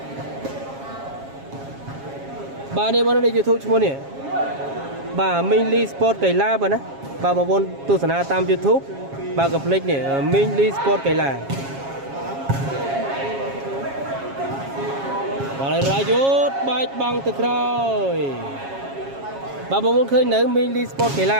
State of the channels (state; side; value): late; left; 7.3 ms